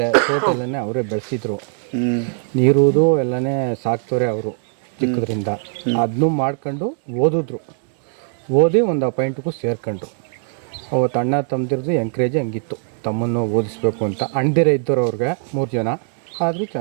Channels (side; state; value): left; silent; 65 dB below the other